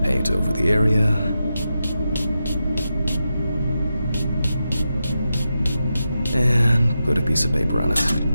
Paint over the area. And put a piece of paper on it.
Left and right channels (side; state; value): both; inverted; correlation -0.89